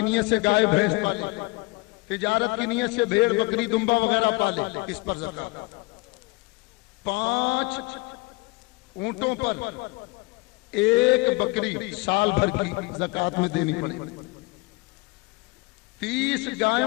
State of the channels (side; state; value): right; quieter; 25.3 dB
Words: سے گائے بھینس پالے, تجارت کی نیت سے بھیڑ بکری دمبا وغیرہ پالے, اس پر زکوٰۃ. 5 اونٹوں پر 1 بکری سال بھر کی زکوٰۃ میں دینی پڑے. 30